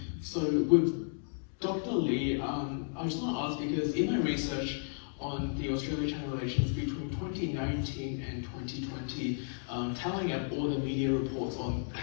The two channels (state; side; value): silent; right; digital silence